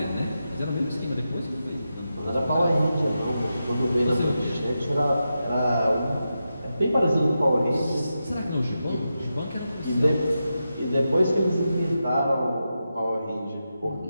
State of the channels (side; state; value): both; inverted; correlation -0.89